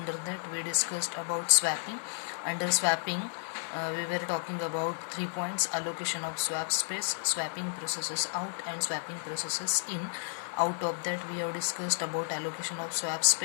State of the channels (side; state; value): right; silent; digital silence